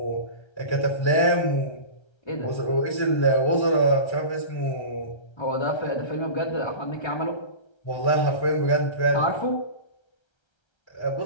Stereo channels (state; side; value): late; right; 1.3 ms